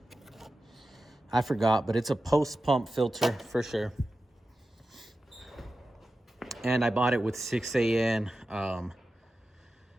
I forgot, but it's a post pump filter for sure. And I bought it with 6AN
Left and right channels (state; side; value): normal; both; correlation 0.93